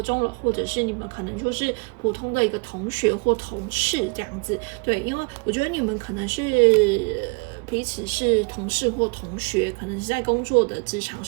了，或者是你们可能就是普通的一个同学或同事这样子，对，因为我觉得你们可能是彼此是同事或同学，可能是在工作的职场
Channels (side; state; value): left; quieter; 33.5 dB